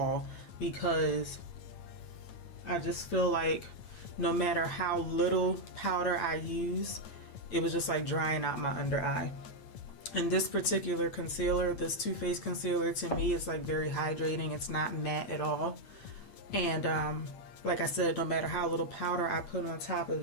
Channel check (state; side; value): late; right; 9.2 ms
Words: because I just feel like no matter how little powder I use, it was just like drying out my under eye. And this particular concealer, this Too Faced concealer, to me is like very hydrating. It's not matte at all. And like I said, no matter how little powder I put on top of